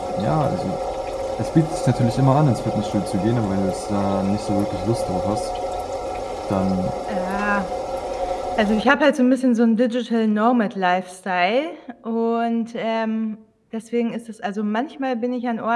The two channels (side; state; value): both; identical; correlation 1.00